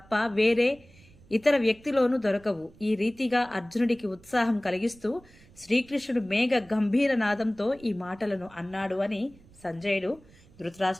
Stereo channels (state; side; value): noise; right; rumble, 25 dB below the sound